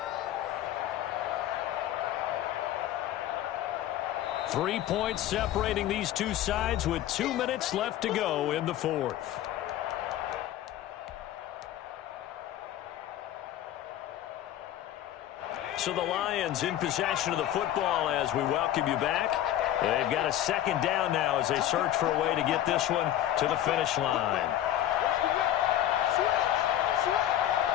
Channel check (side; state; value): right; quieter; 12.3 dB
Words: 3 points separating these two sides with 2 minutes left to go in the fourth. So the Lions in possession of the football as we welcome you back. They've got a 2nd down now as they search for a way to get this one to the finish line.